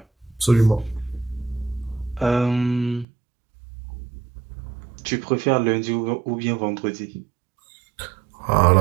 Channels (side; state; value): left; drops out; at 3.1 s